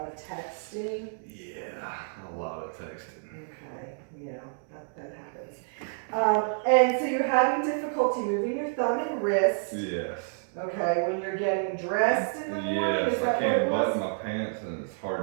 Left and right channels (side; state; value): left; silent; digital silence